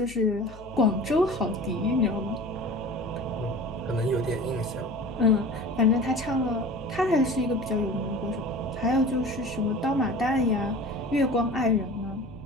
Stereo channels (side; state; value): left; noise; hum, 19 dB below the sound